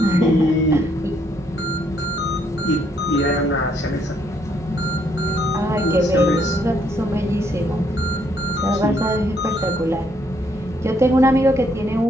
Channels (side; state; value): both; normal; correlation 0.70